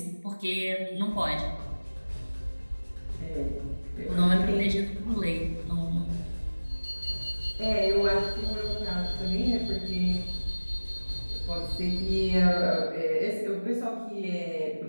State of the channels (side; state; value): both; inverted; correlation -1.00